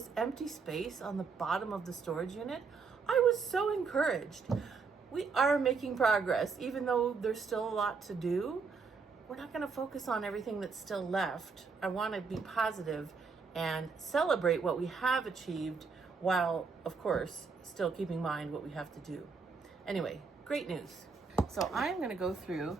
empty space on the bottom of the storage unit, I was so encouraged. We are making progress, even though there's still a lot to do. We're not going to focus on everything that's still left. I want to be positive and celebrate what we have achieved while, of course, still keeping in mind what we have to do. Anyway, great news. So I'm going to go through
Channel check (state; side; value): quieter; left; 5.0 dB